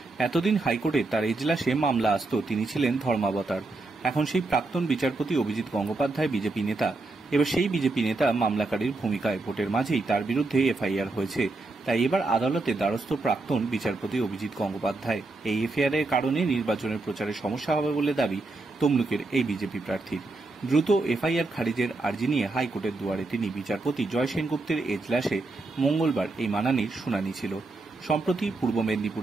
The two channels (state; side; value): quieter; left; 3.2 dB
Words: এতদিন হাইকোর্টে তার এজলাসে মামলা আসত, তিনি ছিলেন ধর্মাবতার। এখন সেই প্রাক্তন বিচারপতি অভিজিৎ গঙ্গোপাধ্যায় বিজেপি নেতা। এবার সেই বিজেপি নেতা মামলাকারীর ভূমিকায়, ভোটের মাঝেই তার বিরুদ্ধে এফআইআর হয়েছে। তাই এবার আদালতে দ্বারস্থ প্রাক্তন বিচারপতি অভিজিৎ গঙ্গোপাধ্যায়। এই এফআইআরের কারণে নির্বাচনের প্রচারে সমস্যা হবে বলে দাবি তমলুকের এই বিজেপি প্রার্থীর। দ্রুত এফআইআর খারিজের আর্জি নিয়ে হাইকোর্টের দুয়ারে তিনি। বিচারপতি জয় সেনগুপ্তের এজলাসে মঙ্গলবার এই মানানির শুনানি ছিল। সম্প্রতি পূর্ব